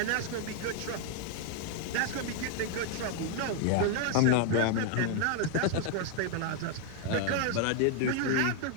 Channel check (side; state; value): both; different; correlation 0.00